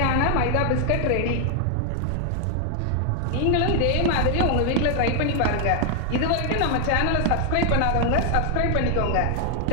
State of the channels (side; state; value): both; different; correlation 0.00